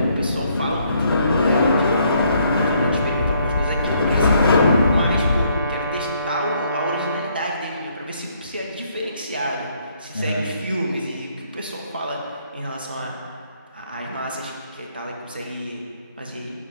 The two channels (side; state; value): both; inverted; correlation -0.69